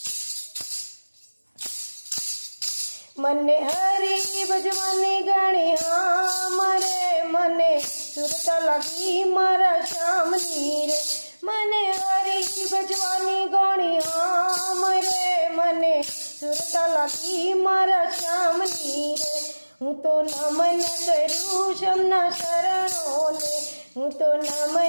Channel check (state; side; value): inverted; both; correlation -1.00